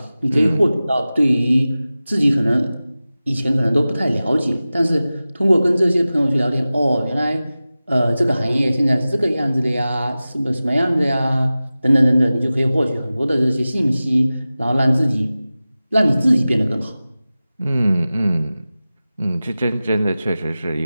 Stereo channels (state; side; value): inverted; both; correlation -0.96